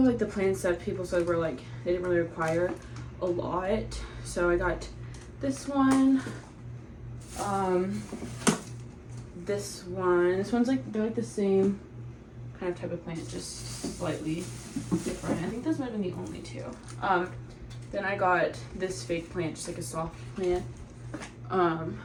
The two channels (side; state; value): both; identical; correlation 1.00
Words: like the plants that people said were like, they didn't really require a lot. So I got this one, this one's like, they're like the same kind of type of plant, just slightly different. I think those might have been the only two. Then I got this fake plant, just like a soft plant. I